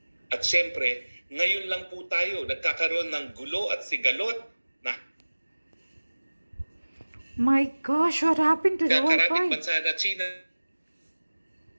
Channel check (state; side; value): inverted; both; correlation -1.00